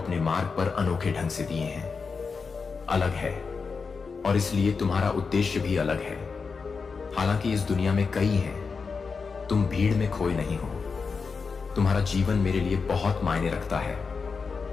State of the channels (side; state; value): right; quieter; 5.0 dB